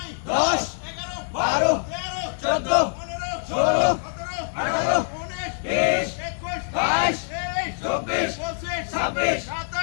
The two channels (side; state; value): right; silent; digital silence